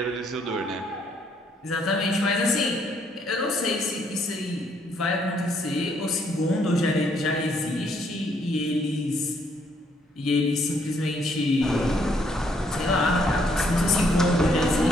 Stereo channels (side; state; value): both; normal; correlation 0.70